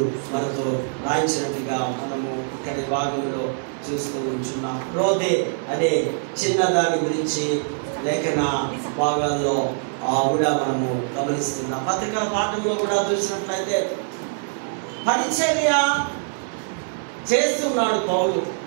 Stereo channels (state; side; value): silent; left; 63 dB below the other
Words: మనతో రాయించినట్టుగా మనము ఇక్కడి భాగంలో చూస్తూ ఉంటున్నాం. రోదే అనే చిన్నదాని గురించి లేఖన భాగాల్లో కూడా మనము గమనిస్తున్నాం. పత్రికల పాఠంలో కూడా చూసినట్లయితే పరిచర్య చేస్తున్నాడు